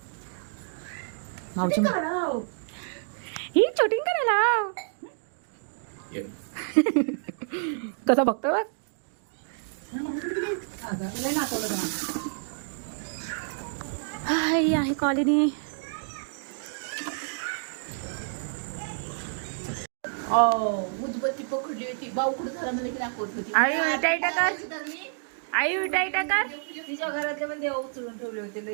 माऊची ही शूटिंग करायला कसा बघतो बघ हाय आहे कॉलनी उदबत्ती पकडली होती बावकुड झाला मला की दाखवत होती आई उलटाई टाकर आई उलटाई टाकर तिच्या घरातले पण देव उचलून ठेवले होते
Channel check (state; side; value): silent; left; digital silence